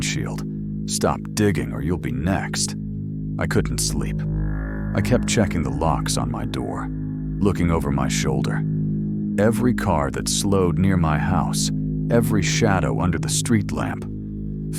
"Stop digging or you'll be next," I couldn't sleep. I kept checking the locks on my door, looking over my shoulder. Every car that slowed near my house, every shadow under the street lamp,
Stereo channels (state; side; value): identical; both; correlation 1.00